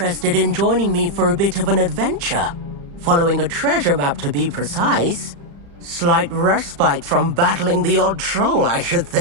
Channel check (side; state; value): left; late; 35 ms